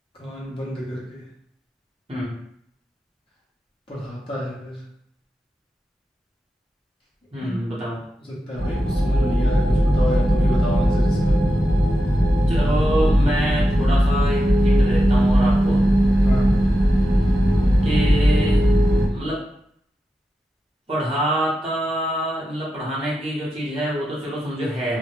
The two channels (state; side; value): normal; both; correlation 0.89